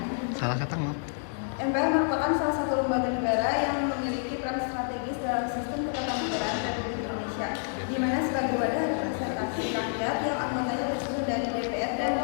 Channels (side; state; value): right; silent; 59 dB below the other